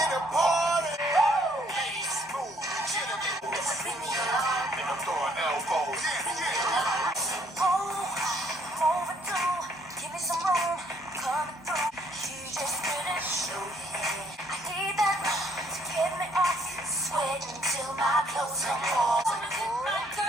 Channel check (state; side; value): normal; both; correlation 0.65